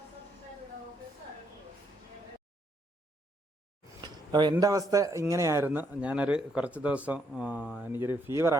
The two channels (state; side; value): normal; both; correlation 0.73